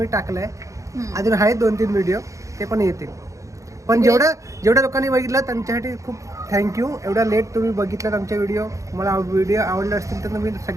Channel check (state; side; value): late; left; 0.15 ms